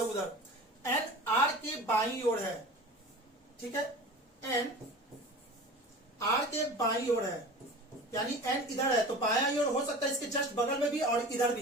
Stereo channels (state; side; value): normal; both; correlation 0.37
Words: उधर। एन आर के बाईं ओर है। ठीक है, एन आर के बाईं ओर है, यानी एन इधर है तो बायां ओर हो सकता है, इसके जस्ट बगल में भी और इधर